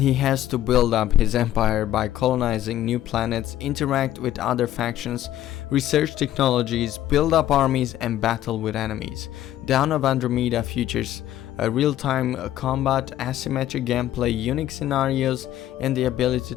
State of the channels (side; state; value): right; quieter; 13.0 dB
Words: he has to build up his empire by colonizing new planets, interact with other factions, research technologies, build up armies and battle with enemies. Dawn of Andromeda features a real-time combat, asymmetric gameplay, unique scenarios and the ability